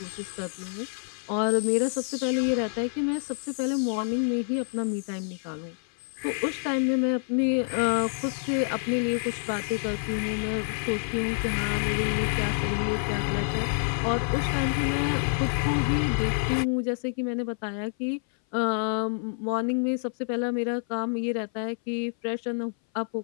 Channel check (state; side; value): silent; right; 58 dB below the other